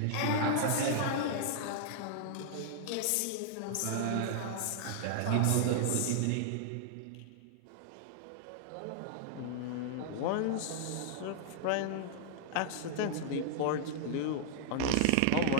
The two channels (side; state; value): both; different; correlation -0.01